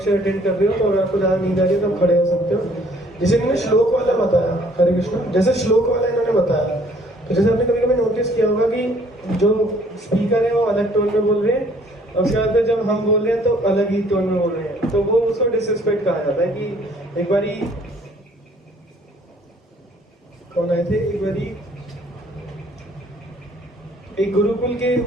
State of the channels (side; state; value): both; normal; correlation 0.59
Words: अटेंड कर रहे हो, तो अगर आपको ज़्यादा नींद आ रही है तो आप खड़े हो सकते हो। जैसे इन्होंने श्लोक वाला बताया, हरे कृष्ण, जैसे श्लोक वाला इन्होंने बताया, तो जैसे आपने कभी कभी नोटिस किया होगा कि जो स्पीकर है वो अलग टोन में बोल रहे हैं, और उसके बाद जब हम बोल रहे हैं तो अलग ही टोन में बोल रहे हैं, तो वो उसको डिसरिस्पेक्ट कहा जाता है। कि एक बारी कौन आए थे, एक बारी एक गुरुकुल के